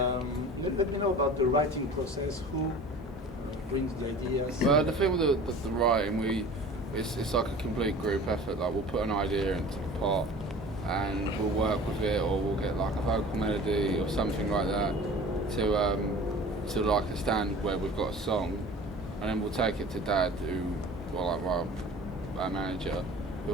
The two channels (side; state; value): both; normal; correlation 0.42